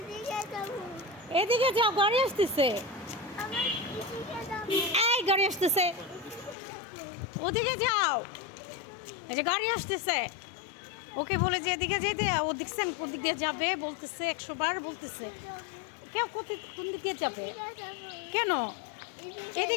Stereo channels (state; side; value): drops out; right; at 6.6 s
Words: এদিকে যাও, গাড়ি আসতেছে। এই গাড়ি আসতেছে, ওদিকে যাও। এই যে গাড়ি আসতেছে, ওকে বলে যে এদিকে যেতে। ও দেখছেন কোন দিক দিয়ে যাবে, বলতেছে 100 বার বলতেছে। কেউ কোন দিক দিয়ে যাবে কেন?